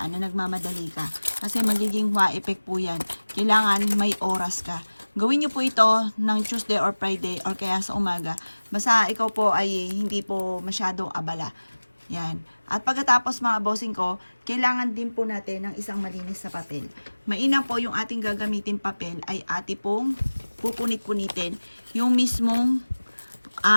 na nagmamadali ka. Kasi magiging hua effect po yan. Kailangan may oras ka. Gawin niyo po ito ng Tuesday or Friday or kaya sa umaga. Basta ikaw po ay hindi po masyadong abala. Yan. At pagkatapos mga bossing ko, kailangan din po natin ng isang malinis na papel. Mainam po yung ating gagamitin papel ay ati pong pupunit-punitin yung mismong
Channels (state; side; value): inverted; both; correlation -1.00